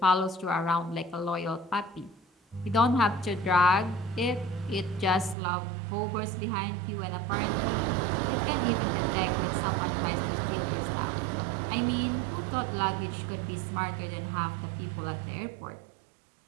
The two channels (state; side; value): drops out; left; at 5.4 s